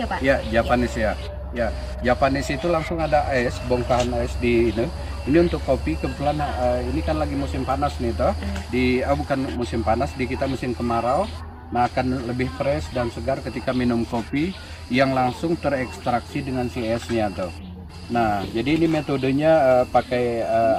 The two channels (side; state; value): both; identical; correlation 1.00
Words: ya Pak? Ya, Japanese ya. Ya, Japanese itu langsung ada es, bongkahan es di ini. Ini untuk kopi, kebetulan ini kan lagi musim panas nih toh. Bukan musim panas, di kita musim kemarau. Nah, akan lebih fresh dan segar ketika minum kopi yang langsung terekstraksi dengan si esnya toh. Nah, jadi ini metodenya pakai